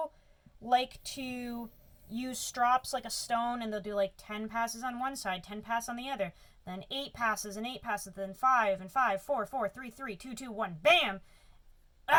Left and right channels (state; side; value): identical; both; correlation 1.00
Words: like to use strops like a stone, and they'll do like 10 passes on one side, 10 passes on the other, then 8 passes and 8 passes, then 5 and 5, 4, 4, 3, 3, 2, 2, 1, bam!